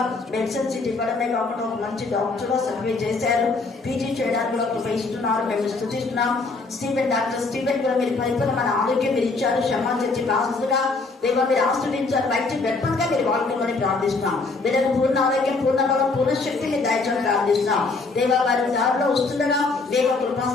మెడిసిన్ సీట్ ఇవ్వడమే కాకుండా ఒక మంచి డాక్టర్ గా సర్వే చేశారు. పీజీ చేయడానికి ఒక ఇస్తున్నారు. మేము స్తుతిస్తున్నాం. డాక్టర్ స్టీవెన్ కూడా మీరు పరిపూర్ణమైన ఆరోగ్యం మీరు ఇచ్చారు. క్షమాచర్చి బాసుగా దేవా మీరు ఆశ్రయించారు. బయట వెప్పన్గా మీరు వాడుకోమని ప్రార్థిస్తున్నాం. వీళ్ళకి పూర్ణ ఆరోగ్యం, పూర్ణ బలం, పూర్ణ శక్తిని దయచని ప్రార్థిస్తున్నాం. దేవా వారి దారిలో వస్తుండగా దేవ కృపా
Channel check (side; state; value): right; quieter; 3.8 dB